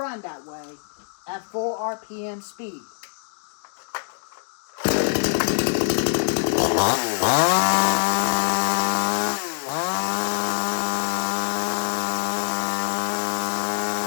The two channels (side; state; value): right; silent; digital silence